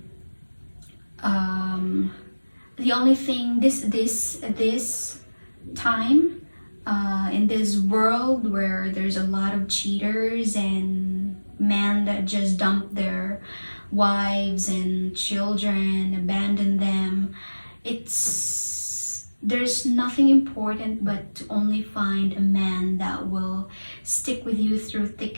The only thing this time in this world where there's a lot of cheaters and men that just dump their wives and children, abandon them, there's nothing important but to only find a man that will stick with you through thick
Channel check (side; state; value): both; inverted; correlation -1.00